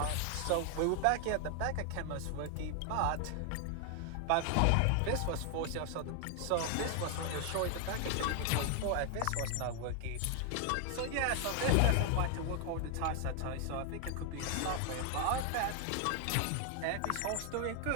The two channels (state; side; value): different; both; correlation 0.00